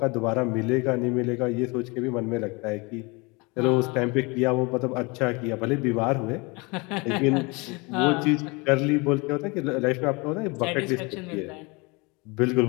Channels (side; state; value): right; quieter; 27.3 dB